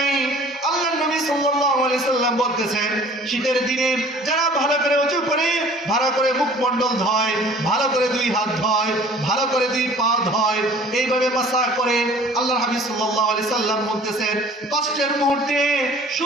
আল্লাহর নবী সাল্লাল্লাহু আলাইহি সাল্লাম বলতেছেন, শীতের দিনে যারা ভালো করে ওযু করে, ভালো করে মুখমণ্ডল ধয়, ভালো করে দুই হাত ধয়, ভালো করে দুই পা ধয়, এইভাবে মাসাহ করে, আল্লাহর হাবিব সাল্লাল্লাহু আলাইহি সাল্লাম বলতেছেন, কষ্টের মুহূর্তে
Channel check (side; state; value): both; normal; correlation 0.50